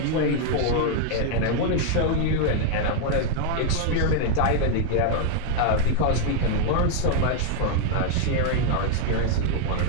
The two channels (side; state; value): both; different; correlation 0.00